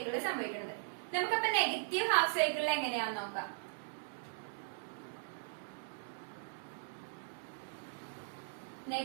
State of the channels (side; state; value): left; silent; digital silence